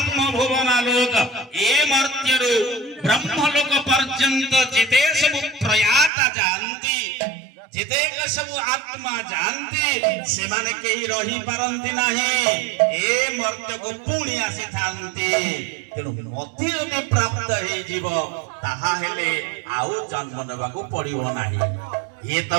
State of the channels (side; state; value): left; drops out; at 6.1 s